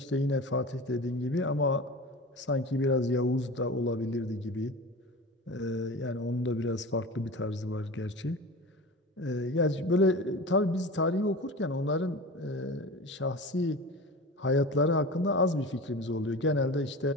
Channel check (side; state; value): both; normal; correlation 0.32